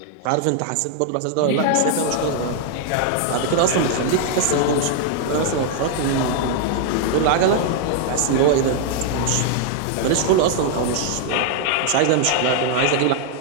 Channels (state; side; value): different; both; correlation 0.00